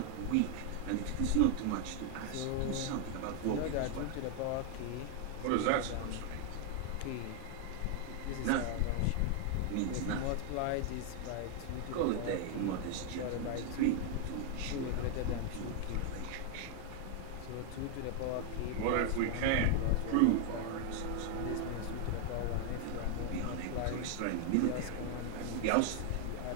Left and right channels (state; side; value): different; both; correlation 0.00